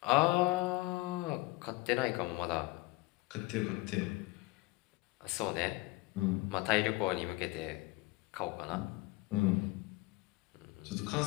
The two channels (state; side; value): quieter; right; 21.4 dB